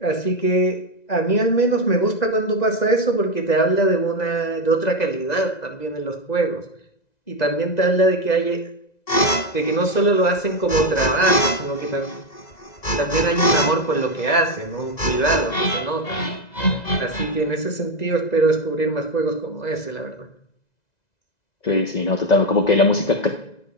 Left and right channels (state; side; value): late; right; 2.0 ms